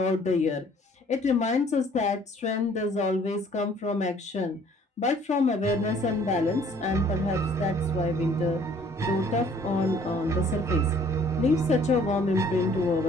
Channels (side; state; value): both; normal; correlation 0.57